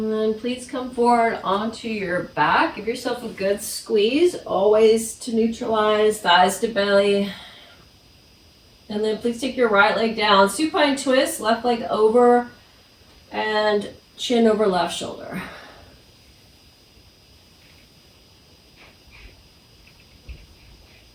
then please come forward onto your back. Give yourself a good squeeze, always to neutralize, thighs to belly. And then please take your right leg down. Supine twist, left leg over and chin over left shoulder.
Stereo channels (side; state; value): both; identical; correlation 1.00